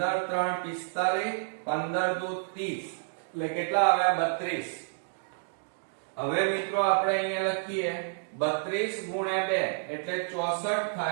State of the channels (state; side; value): silent; left; digital silence